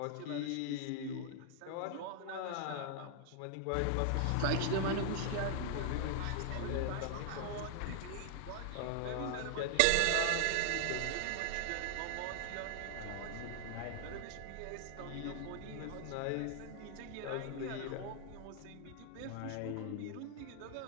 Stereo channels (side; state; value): both; different; correlation 0.00